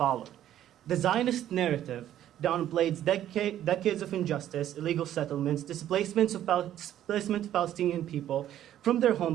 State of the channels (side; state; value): left; quieter; 11.8 dB